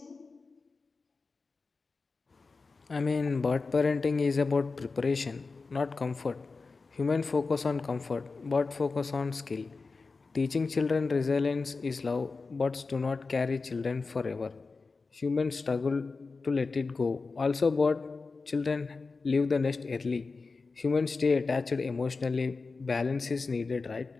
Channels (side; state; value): right; quieter; 4.1 dB